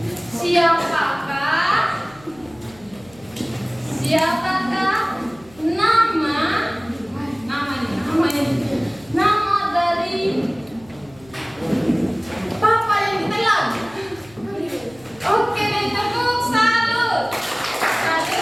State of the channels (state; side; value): noise; left; hum, 25 dB below the sound